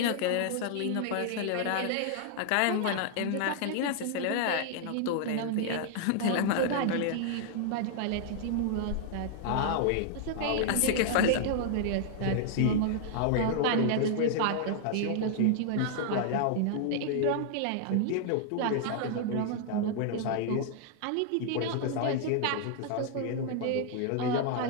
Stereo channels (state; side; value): different; both; correlation -0.01